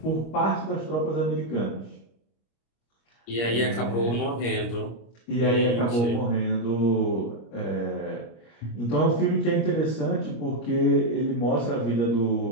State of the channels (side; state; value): right; late; 25 ms